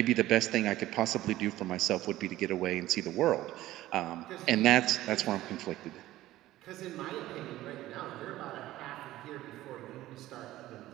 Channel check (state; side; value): quieter; left; 15.5 dB